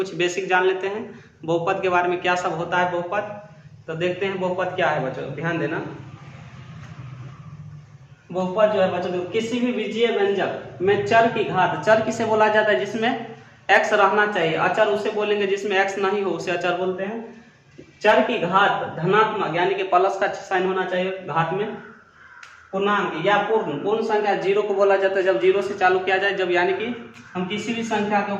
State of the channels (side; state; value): both; identical; correlation 1.00